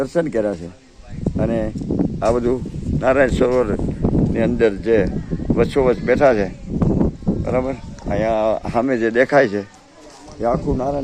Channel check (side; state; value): both; identical; correlation 1.00